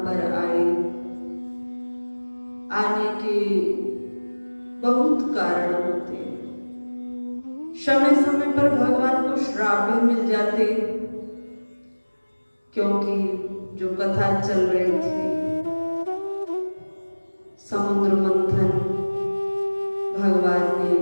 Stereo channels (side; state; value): both; inverted; correlation -1.00